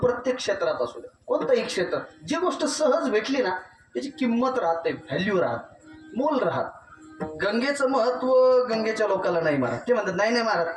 क्षेत्रात असू द्या, कोणतंही क्षेत्र, जी गोष्ट सहज भेटली ना त्याची किंमत राहते, व्हॅल्यू राहत, मोल राहत. गंगेचं महत्व गंगेच्या लोकांना नाही मारत. ते म्हणतात नाही नाही मारत,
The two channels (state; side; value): identical; both; correlation 1.00